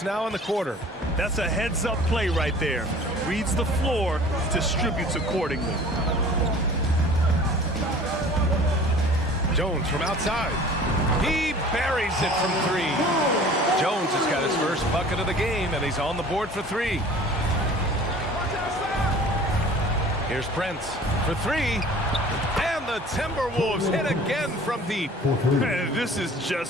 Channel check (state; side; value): normal; both; correlation 0.46